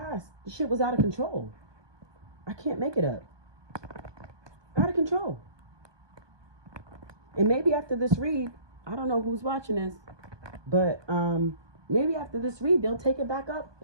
the shit was out of control. I can't make it up. Out of control. And maybe after this read, I don't know who's watching this, but maybe after this read, they'll take it back up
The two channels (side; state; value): left; late; 1.2 ms